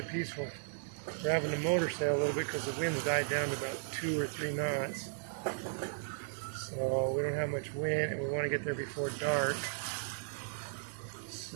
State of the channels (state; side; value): silent; left; digital silence